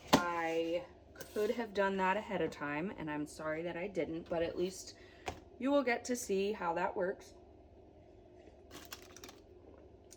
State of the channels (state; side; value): identical; both; correlation 1.00